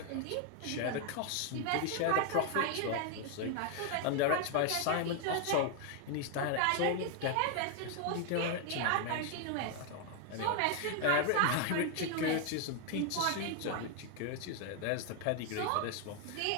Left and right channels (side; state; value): both; different; correlation 0.00